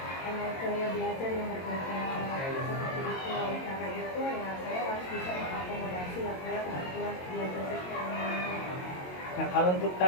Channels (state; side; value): late; right; 22 ms